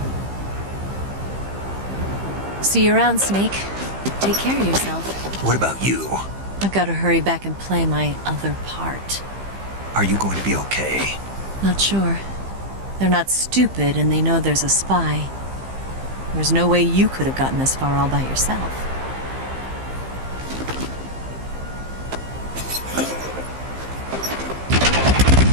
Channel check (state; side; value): late; left; 15 ms